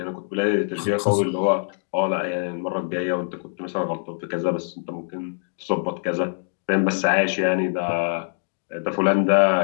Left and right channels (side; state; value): right; silent; digital silence